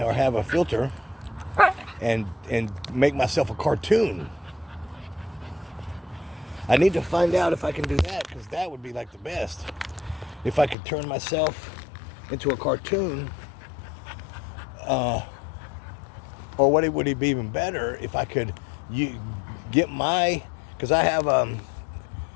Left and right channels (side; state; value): right; drops out; at 10.8 s